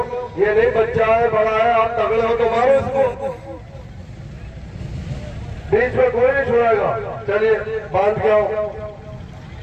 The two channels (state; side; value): identical; both; correlation 1.00